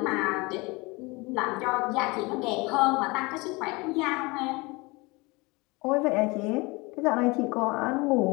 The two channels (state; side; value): quieter; right; 25.0 dB